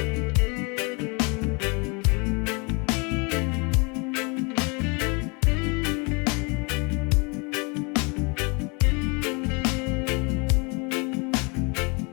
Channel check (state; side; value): quieter; right; 31.0 dB